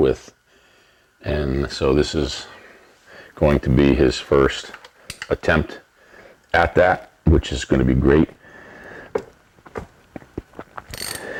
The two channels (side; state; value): both; identical; correlation 1.00